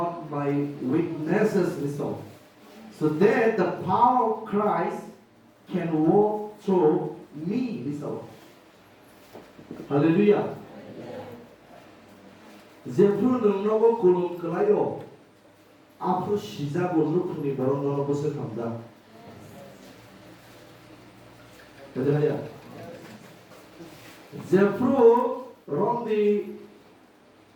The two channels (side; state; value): both; identical; correlation 1.00